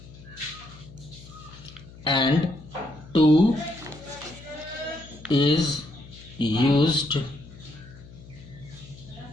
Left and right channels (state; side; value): noise; left; hum, 19 dB below the sound